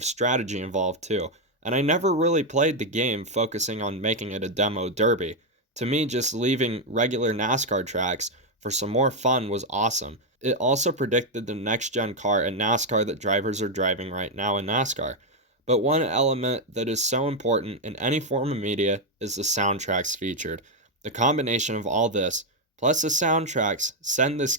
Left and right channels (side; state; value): both; normal; correlation 0.02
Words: strategy involved too. And I never really played the game focusing on making it a demo derby. To me, just leaving regular NASCAR tracks for some more fun was awesome. It also predicted the next-gen car in NASCAR that drivers are driving right now in NASCAR. But one element that is so important in any form of media is the soundtracks featured. The combination of all this, plus the soundtracks, send this